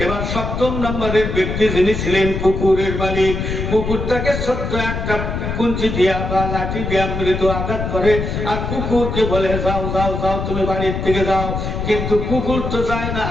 এবার 7 নম্বরের ব্যক্তি যিনি ছিলেন কুকুরের মালিক, কুকুরটাকে ছোট্ট একটা কুঞ্চি দিয়া বা লাঠি দিয়া মৃদু আঘাত করে আর কুকুরকে বলে যাও যাও যাও তুমি বাড়ির থেকে যাও। কিন্তু কুকুর তো যায় না,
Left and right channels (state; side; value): noise; left; rumble, 3 dB below the sound